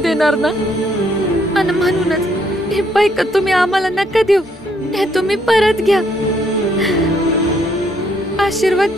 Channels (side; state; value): both; normal; correlation 0.70